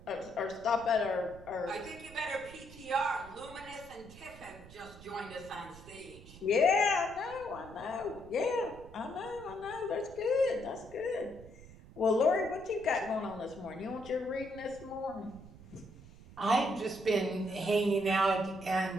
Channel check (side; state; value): right; noise; rumble, 18 dB below the sound